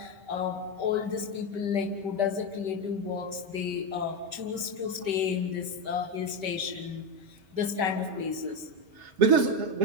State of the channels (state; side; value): late; left; 5.2 ms